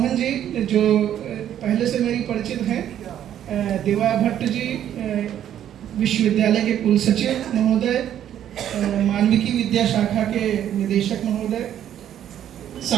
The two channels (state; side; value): quieter; left; 10.6 dB